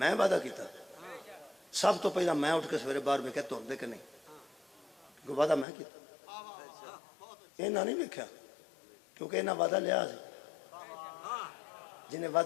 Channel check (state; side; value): drops out; right; at 5.7 s